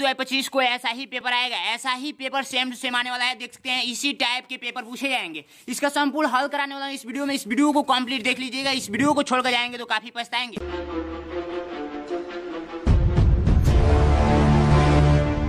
को ऐसा ही पेपर आएगा, ऐसा ही पेपर सेम टू सेम आने वाला है। देख सकते हैं इसी टाइप के पेपर पूछे जाएंगे। इसका संपूर्ण हल कराने वाला इस वीडियो में। इस वीडियो को कंप्लीट देख लीजिएगा, इस वीडियो को छोड़कर जाएंगे तो काफी पछताएंगे।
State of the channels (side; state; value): both; identical; correlation 1.00